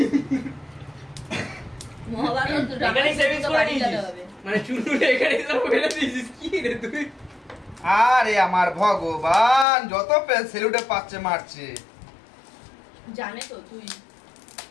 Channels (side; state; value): right; drops out; at 9.7 s